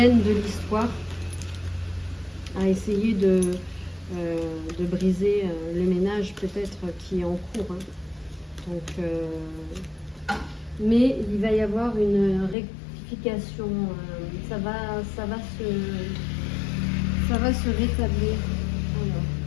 de l'histoire à essayer de briser le ménage peut-être qui est en cours. Hein. Donc, mais il va y avoir une rectification. Ça va se rétablir. Alors,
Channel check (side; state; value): right; drops out; at 12.6 s